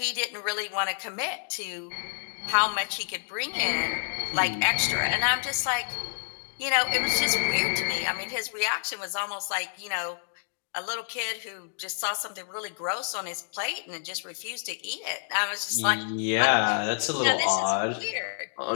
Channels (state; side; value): silent; right; digital silence